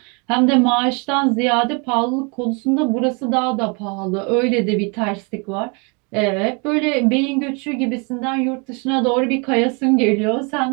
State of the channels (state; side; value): quieter; left; 32.3 dB